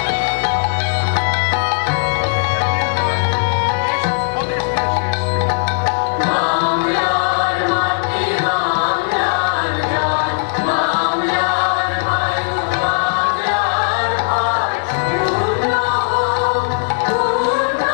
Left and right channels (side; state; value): right; silent; 64 dB below the other